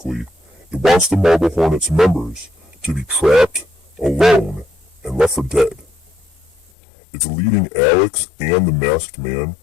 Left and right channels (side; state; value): right; drops out; at 6.7 s